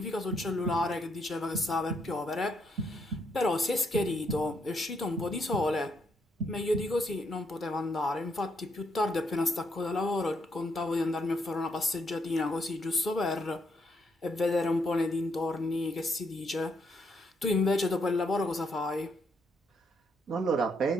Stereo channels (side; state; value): both; normal; correlation 0.75